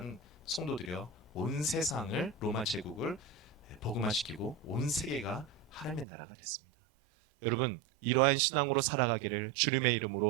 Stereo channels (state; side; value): drops out; left; at 6.1 s